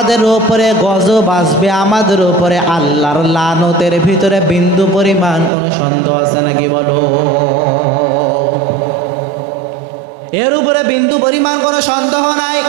উপরে গজব আসবে, আমাদের উপরে আল্লাহর লানতের ভিতরে বিন্দু পরিমাণ কোনো সন্দেহ আছে নাকি বলো? এর উপরে বিন্দু পরিমাণ কোনো সন্দেহ নাই।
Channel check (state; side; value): drops out; left; at 5.5 s